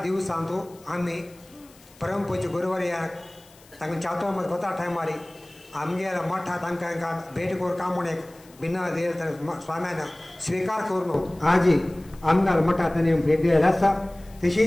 दिवसांतू आम्ही परमपूज्य गुरुवारी या तांकां चातो मध्ये बता टायमारी आमगेर मठा तांकां भेट करून काम म्हणून एक बिना देर स्वाम्यान स्वीकार करून आजी आमगार मठा तांणी भेट दिलेली आसा.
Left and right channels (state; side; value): noise; left; hiss, 26 dB below the sound